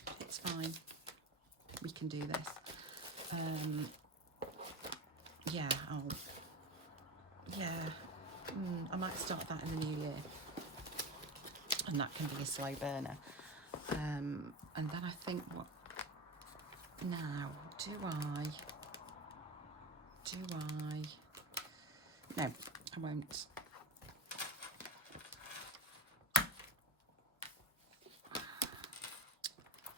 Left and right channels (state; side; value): normal; both; correlation 0.22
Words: It's fine. We can do this. Yeah, I might start that in the new year. And that can be a slow burner. And then I think what... Now, do I... No, I won't.